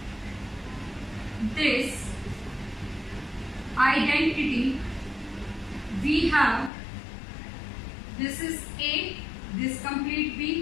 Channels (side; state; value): right; drops out; at 6.7 s